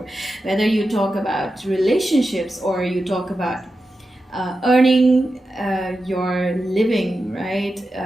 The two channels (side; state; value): both; normal; correlation 0.91